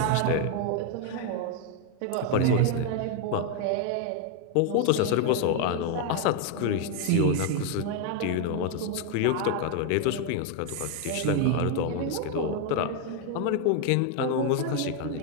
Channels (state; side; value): different; both; correlation 0.01